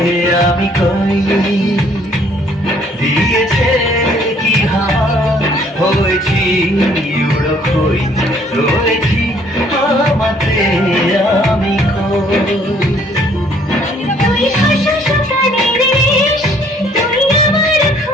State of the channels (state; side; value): normal; both; correlation 0.61